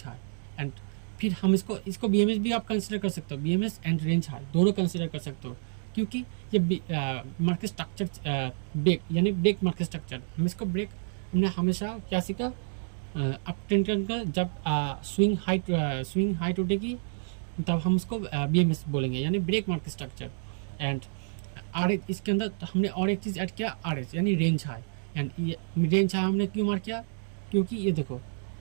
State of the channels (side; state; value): left; silent; digital silence